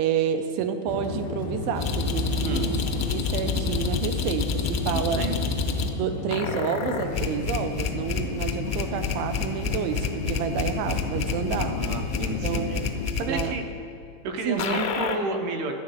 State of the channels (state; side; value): late; left; 15 ms